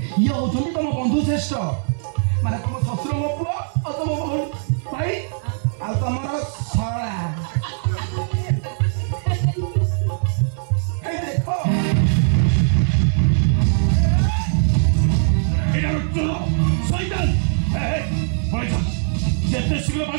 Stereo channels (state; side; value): silent; left; 58 dB below the other